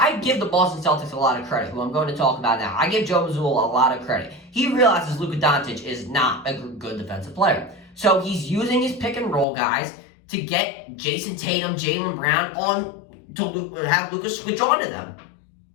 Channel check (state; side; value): drops out; right; at 9.5 s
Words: give the Boston Celtics a lot of credit, who I'm going to talk about now. I give Joe Mazzulla a lot of credit. He realizes Luka Doncic is not a good defensive player, so he's using his pick and roll guys to get Jason Tatum, Jaylen Brown on to have Luka switch on to them.